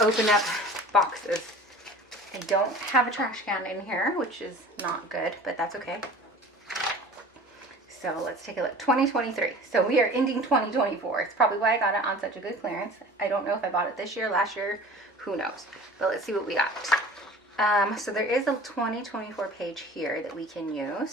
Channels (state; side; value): normal; both; correlation 0.43